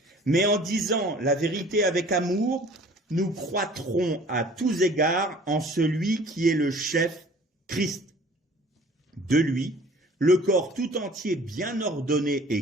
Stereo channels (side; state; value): both; normal; correlation 0.50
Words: Mais en disant la vérité avec amour, nous croîtrons à tous égards en celui qui est le chef, Christ. De lui, le corps tout entier bien ordonné